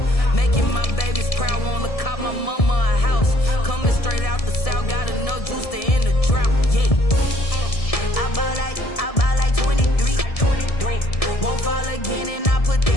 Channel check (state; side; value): late; right; 1.7 ms